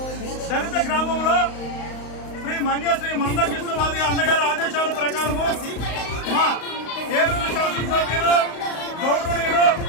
దళిత గ్రామంలో శ్రీ మందకృష్ణవాది అన్నగారి ఆదేశాల ప్రకారము మా ఏలూరు శాసనసభ్యులు గౌరవనీయులు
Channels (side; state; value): right; late; 35 ms